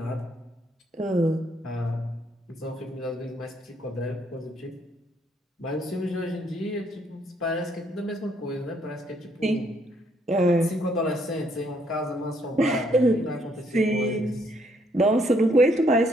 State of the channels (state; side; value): normal; both; correlation 0.70